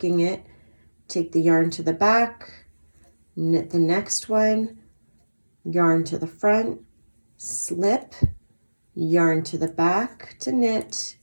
it. Take the yarn to the back, knit the next one, yarn to the front, slip, yarn to the back to knit,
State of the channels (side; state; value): both; inverted; correlation -1.00